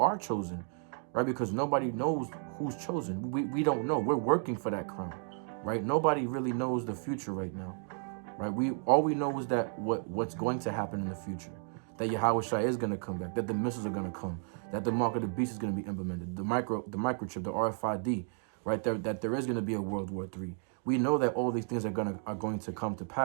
chosen, right? Because nobody knows who's chosen. We don't know. We're working for that crown, right? Nobody really knows the future right now, right? All we know is that what's going to happen in the future, that Yahweh Shai is going to come back, that the missiles are going to come, that the mark of the beast is going to be implemented, the microchip, the RFID, right? That there is going to be a World War III. We know that all these things are going to come to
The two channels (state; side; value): silent; left; 56 dB below the other